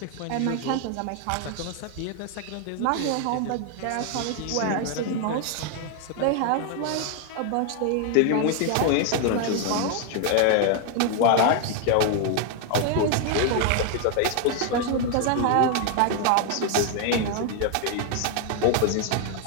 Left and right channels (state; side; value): different; both; correlation 0.00